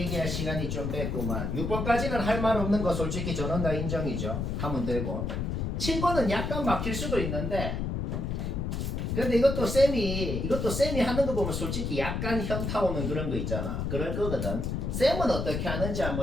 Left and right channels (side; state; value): left; noise; rumble, 2 dB below the sound